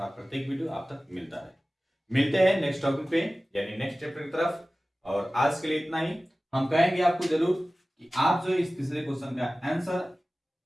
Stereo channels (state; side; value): normal; both; correlation 0.97